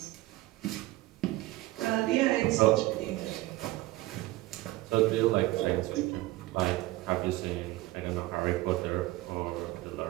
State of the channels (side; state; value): left; quieter; 18.4 dB